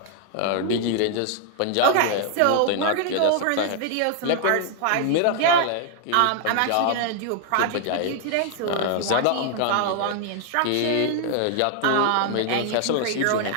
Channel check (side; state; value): both; different; correlation 0.00